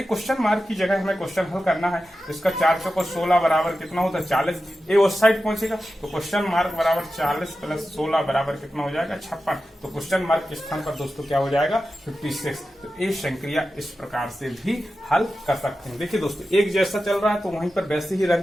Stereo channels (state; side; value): normal; both; correlation 0.92